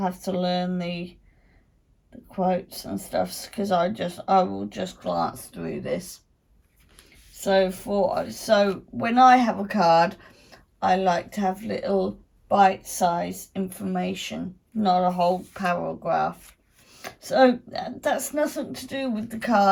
to learn the quotes and stuff, because I will just glance through this. So when I have a card, I like to have little bite-sized information, not a whole paragraph. So that's nothing to do with the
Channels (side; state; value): both; identical; correlation 1.00